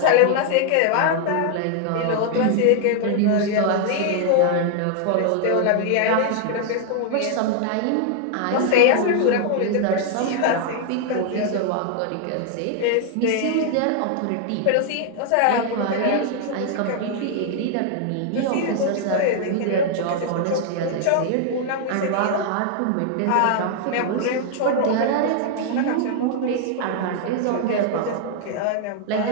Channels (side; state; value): both; different; correlation 0.00